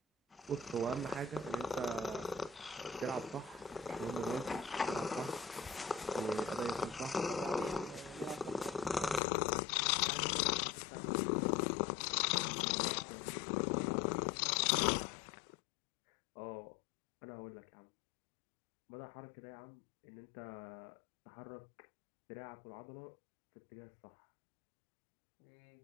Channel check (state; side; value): drops out; right; at 9.2 s